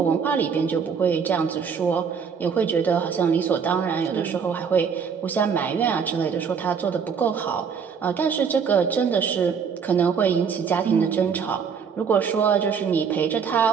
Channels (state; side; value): quieter; left; 6.5 dB